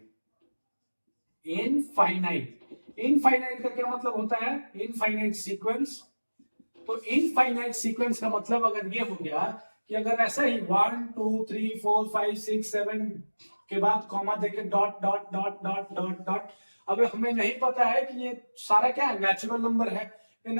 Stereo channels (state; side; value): inverted; both; correlation -1.00